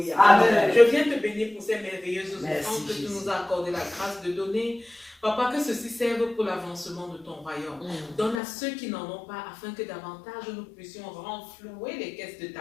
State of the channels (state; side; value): drops out; right; at 8.4 s